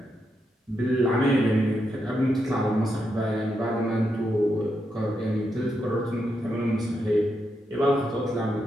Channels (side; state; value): both; normal; correlation 0.83